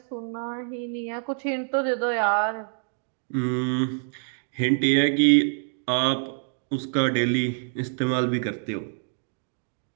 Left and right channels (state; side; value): silent; left; digital silence